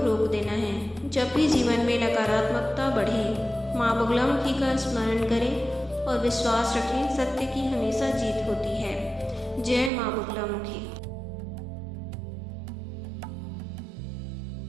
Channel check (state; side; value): drops out; left; at 9.9 s